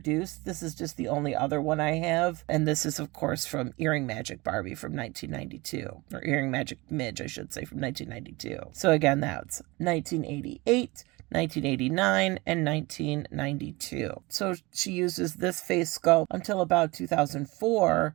This is just the only other one I have. And this is, of course, from Earring Magic Barbie from 1992. Or Earring Magic Midge, I should say, from 1992. So again, that's 1988, 1989, and 1992. So she uses this face sculpt until about 2004,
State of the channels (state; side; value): quieter; left; 23.3 dB